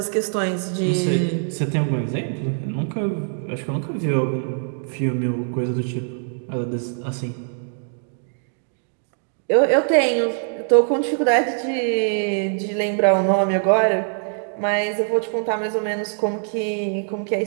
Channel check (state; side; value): silent; left; digital silence